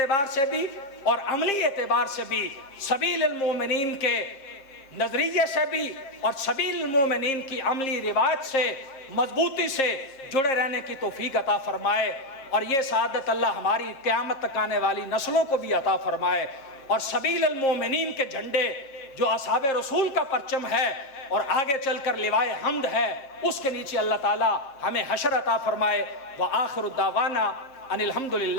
سے بھی اور عملی اعتبار سے بھی سبیل المومنین کے نظریے سے بھی اور سبیل المومنین کی عملی روایت سے مضبوطی سے جڑے رہنے کی توفیق عطا فرمائے، اور یہ سعادت اللہ ہماری قیامت تک آنے والی نسلوں کو بھی عطا فرمائے۔ اور سبیل المومنین کے جھنڈے جو اصحاب رسول کا پرچم ہے اور آگے چل کر لوائے حمد ہے، اس کے نیچے اللہ تعالی ہمیں حشر عطا فرمائے۔ وآخر الدعوانا ان الحمد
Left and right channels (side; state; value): right; late; 7.5 ms